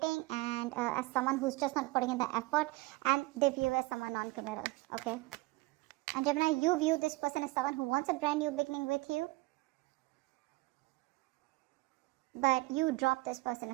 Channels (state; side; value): quieter; left; 21.8 dB